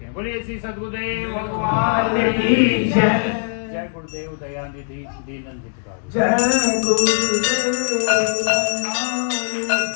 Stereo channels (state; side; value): silent; right; digital silence